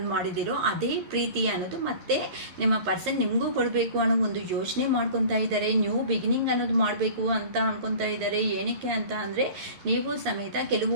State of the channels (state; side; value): late; left; 11 ms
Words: ಮಾಡಿದ್ದೀರೋ ಅದೇ ಪ್ರೀತಿ ಅನ್ನೋದು ಮತ್ತೆ ನಿಮ್ಮ ಪರ್ಸನ್ ನಿಮಗೂ ಕೊಡಬೇಕು ಅನ್ನೋ ಒಂದು ಯೋಚನೆ ಮಾಡ್ಕೊತಾ ಇದ್ದಾರೆ. ನ್ಯೂ ಬಿಗಿನಿಂಗ್ ಅನ್ನೋದು ಮಾಡಬೇಕು ಅಂತ ಅನ್ಕೊತಾ ಇದ್ದಾರೆ. ಏನಕ್ಕೆ ಅಂತ ಅಂದರೆ, ನೀವು ಸಮೇತ